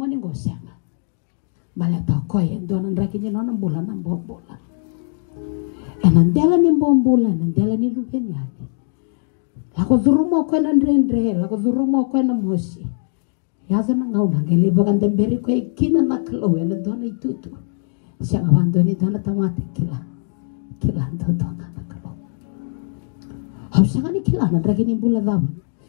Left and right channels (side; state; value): right; silent; digital silence